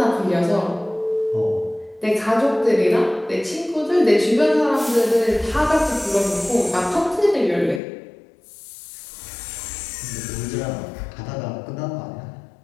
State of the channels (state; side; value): drops out; right; at 7.8 s